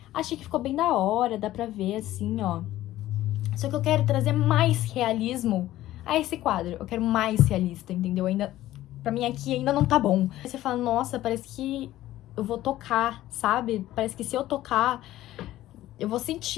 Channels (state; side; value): quieter; right; 14.8 dB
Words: Achei que ficou bem da hora, dá pra ver assim, ó. Só que eu quero trazer mais realismo a esse quadro. Eu quero mais realista, entendeu? Ainda... Pra mim aqui ainda não tá bom. Aí você fala, nossa, parece que eu vou tocar, sabe? Parece que se eu tocar, eu vou